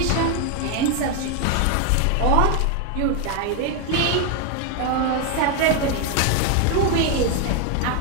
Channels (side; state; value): both; different; correlation 0.01